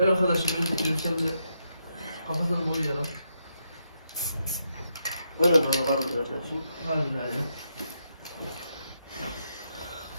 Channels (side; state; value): both; inverted; correlation -0.80